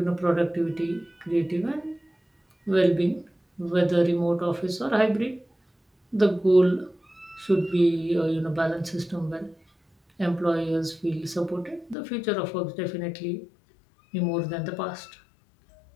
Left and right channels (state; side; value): drops out; right; at 12.0 s